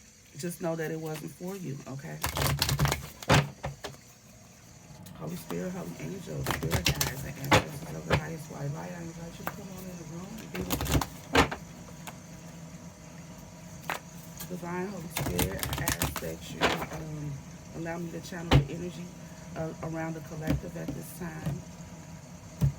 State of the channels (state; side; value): identical; both; correlation 1.00